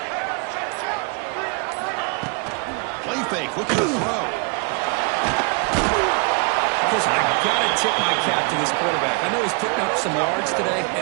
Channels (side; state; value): left; quieter; 33.5 dB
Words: Play fake, looking to throw. Chris, I got to tip my cap to this quarterback. I know he's putting up some yards today,